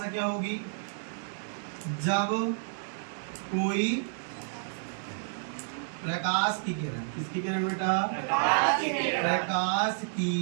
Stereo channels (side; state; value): left; silent; digital silence